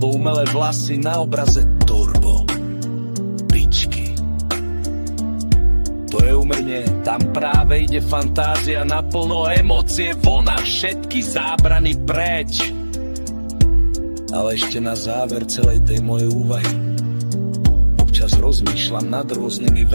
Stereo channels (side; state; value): both; inverted; correlation -1.00